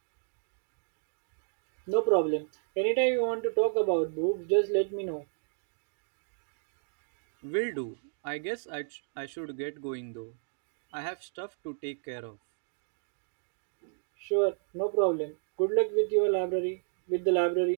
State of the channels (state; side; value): silent; left; digital silence